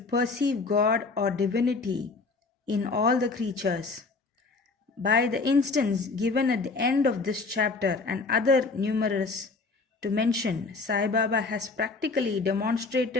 God or divinity in all the creatures. By the instance given at the end of this chapter and other numerous to mention, Sai Baba has practically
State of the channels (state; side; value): quieter; right; 4.0 dB